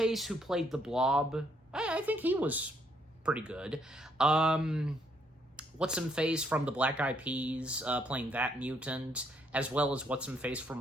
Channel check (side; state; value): both; normal; correlation 0.71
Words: who played the Blob, I think he was pretty good. What's-Him-Face from the Black Eyed Peas, playing that mutant, as well as What's-Him-Face